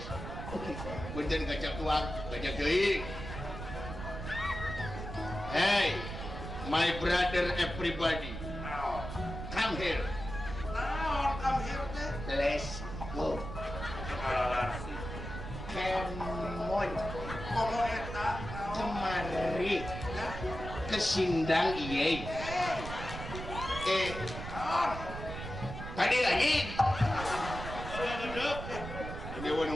Punten gacang tuang, gacang deui. Hey, my brother everybody. Come here. Let's go. Kemon kemari ke Sindang iye. Tadi lagi. Ini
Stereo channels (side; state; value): right; noise; rumble, 8 dB below the sound